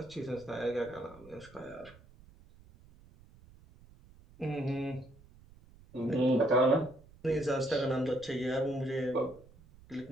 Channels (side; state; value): right; noise; rumble, 24 dB below the sound